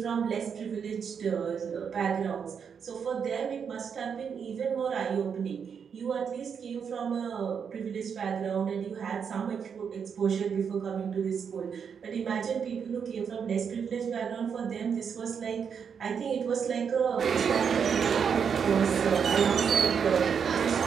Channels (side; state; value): left; quieter; 6.9 dB